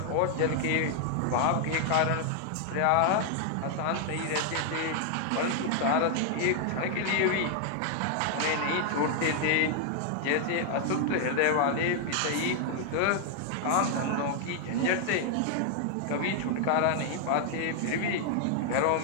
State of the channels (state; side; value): different; both; correlation 0.00